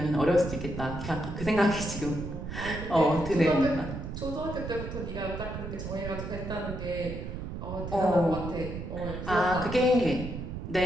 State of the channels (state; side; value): noise; right; rumble, 7 dB below the sound